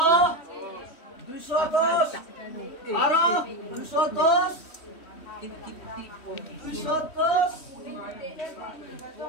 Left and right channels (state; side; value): late; right; 3.1 ms